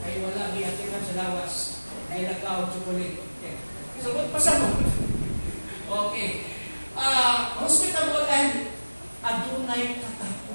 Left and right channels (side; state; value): both; inverted; correlation -1.00